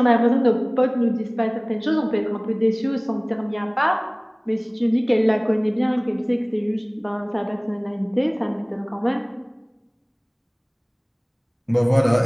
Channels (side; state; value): both; identical; correlation 1.00